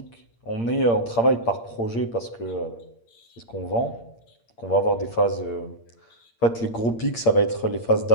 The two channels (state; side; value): late; right; 8.7 ms